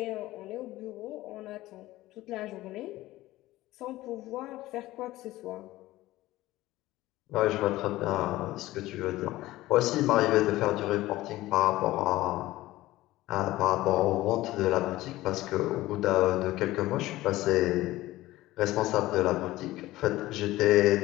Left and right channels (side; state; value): right; quieter; 17.0 dB